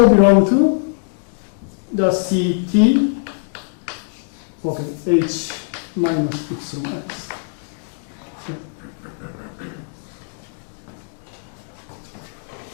belong to just CT, okay, H minus epsilon x.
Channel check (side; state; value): right; silent; digital silence